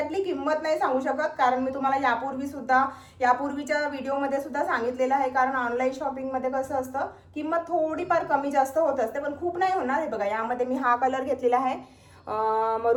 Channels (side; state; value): both; identical; correlation 1.00